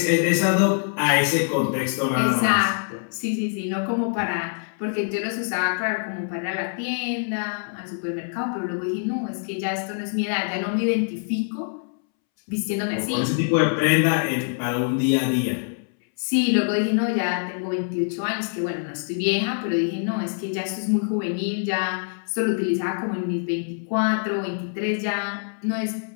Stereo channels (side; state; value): right; silent; 62 dB below the other